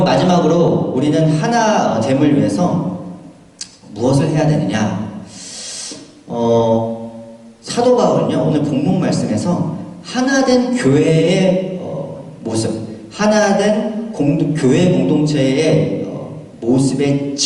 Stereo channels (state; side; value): identical; both; correlation 1.00